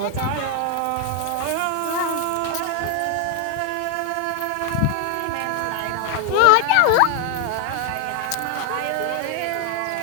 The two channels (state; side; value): different; both; correlation 0.01